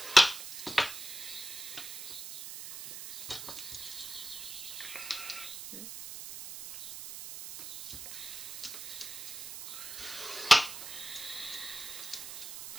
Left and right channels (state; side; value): noise; right; hiss, 9 dB below the sound